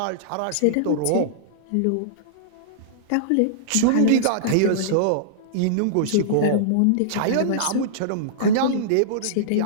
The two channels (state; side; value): different; both; correlation -0.02